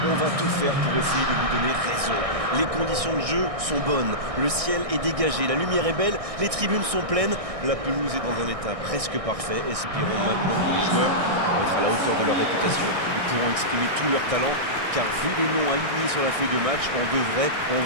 On va tout faire pour essayer de vous donner raison. Les conditions de jeu sont bonnes, le ciel est dégagé, la lumière est belle, les tribunes sont pleines, la pelouse est dans un état presque parfait. Espérons maintenant que les joueurs vont être à la hauteur de leur réputation et pourront exprimer tout leur talent, car vu les noms alignés sur la feuille de match, on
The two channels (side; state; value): left; late; 1.6 ms